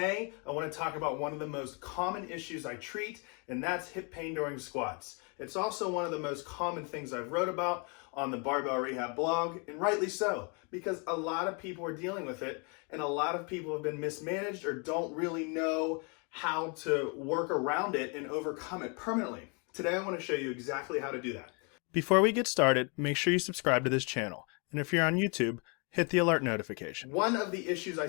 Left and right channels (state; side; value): quieter; right; 34.4 dB